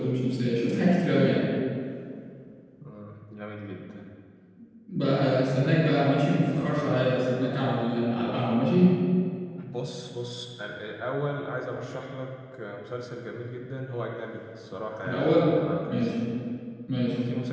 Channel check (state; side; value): identical; both; correlation 1.00